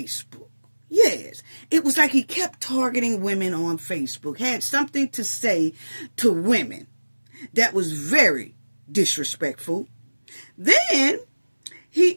Yes, it was like he kept targeting women on Facebook, had something to say to women that was very disrespectful. Then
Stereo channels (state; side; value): inverted; both; correlation -1.00